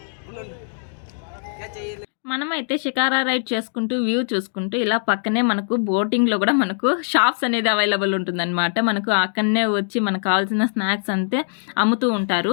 మనమైతే షికారా రైడ్ చేసుకుంటూ వ్యూ చూసుకుంటూ ఇలా పక్కనే మనకు బోటింగ్లో కూడా మనకు షాప్స్ అనేది అవైలబుల్ ఉంటుందన్నమాట. మనకు అక్కడనే వచ్చి మనకు కావాల్సిన స్నాక్స్ అంతే అమ్ముతూ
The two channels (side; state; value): right; silent; digital silence